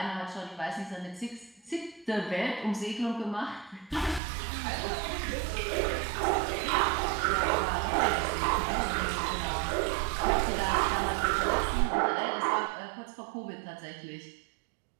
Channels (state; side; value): drops out; left; at 4.2 s